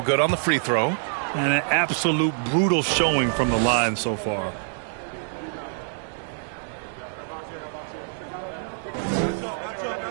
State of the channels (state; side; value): silent; left; digital silence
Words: good on the free throw. And an absolute brutal showing from the line so far.